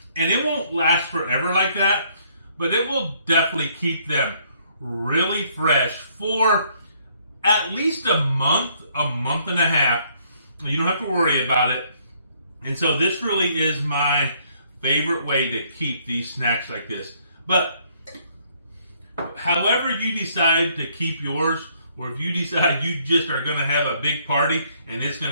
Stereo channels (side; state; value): both; inverted; correlation -0.66